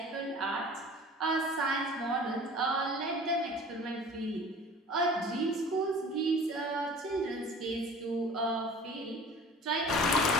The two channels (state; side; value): normal; both; correlation 0.44